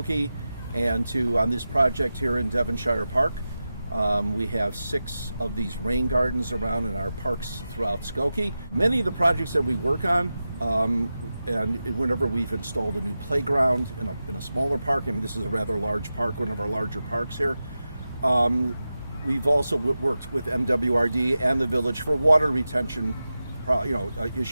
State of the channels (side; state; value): both; inverted; correlation -0.93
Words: and on this project here in Devonshire Park. We have 6 of these rain gardens around in our parks throughout Skokie. Many of the projects that we work on, and whenever we've installed a new playground in a smaller park, and this is a rather large park, one of our larger parks here, we've also worked with MWRD and the village for water retention